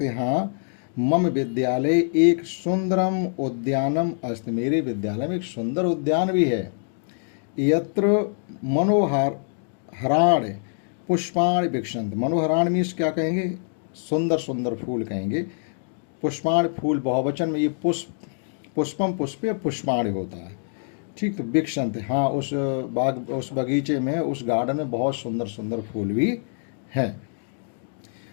हैं, हाँ मम विद्यालय एक सुंदरम उद्यानम अस्ति, मेरे विद्यालय में एक सुंदर उद्यान भी है। यत्र मनोहर हराण पुष्पाण विक्षंत, मनोहराण मीन्स क्या कहेंगे, सुंदर सुंदर फूल कहेंगे। पुष्पाण फूल बहुवचन में, ये पुष्पम पुष्पे पुष्पाण होता है। ठीक, तो विक्षंत, हाँ उस बगीचे में, उस गार्डन में बहुत सुंदर सुंदर फूल भी हैं।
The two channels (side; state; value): right; silent; digital silence